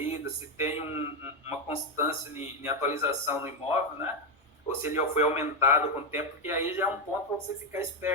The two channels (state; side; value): normal; both; correlation 0.07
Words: se tem uma constância em atualização no imóvel, né? Ou se ele foi aumentado com o tempo, porque aí já é um ponto para você ficar